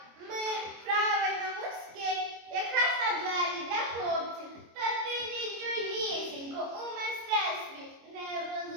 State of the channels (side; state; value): left; late; 25 ms